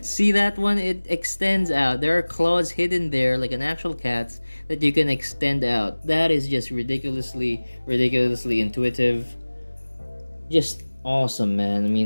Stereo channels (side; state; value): both; inverted; correlation -1.00